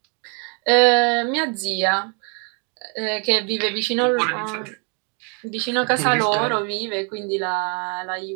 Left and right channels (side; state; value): left; quieter; 36.6 dB